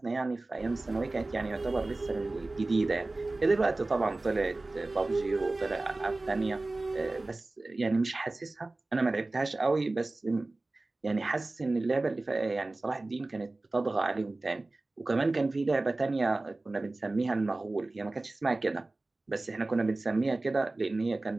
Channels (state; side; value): quieter; left; 3.1 dB